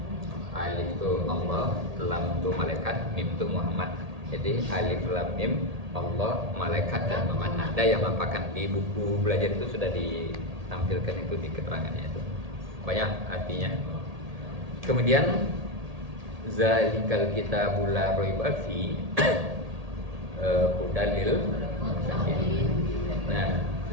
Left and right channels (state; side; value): late; left; 1.8 ms